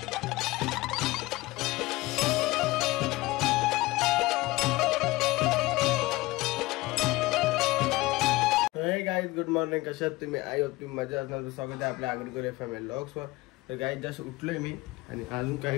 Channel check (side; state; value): right; quieter; 20.5 dB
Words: गाइस गुड मॉर्निंग, कशात तुम्ही. आई होप तुम्ही मजा असणार. स्वागत आहे आपल्या आगरकर FM व्लॉग्सवर. तर गाइस जस्ट उठलोय मी आणि अजून